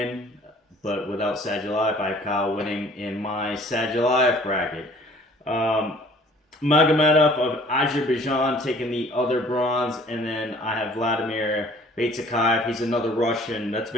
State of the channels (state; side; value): normal; both; correlation 0.53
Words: but without Sadulayev, I have Kyle winning in my Sadulayev bracket. Magomedov of Azerbaijan taking the other bronze, and then I have Vladimir Baitakaya. He's another Russian. That's